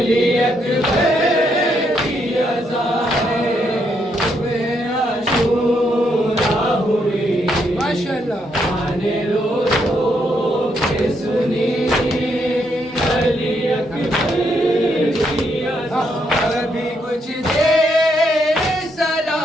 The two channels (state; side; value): normal; both; correlation 0.76